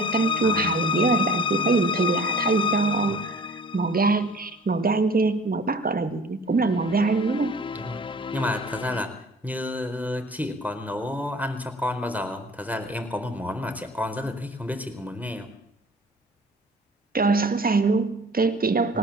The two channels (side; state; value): both; normal; correlation 0.47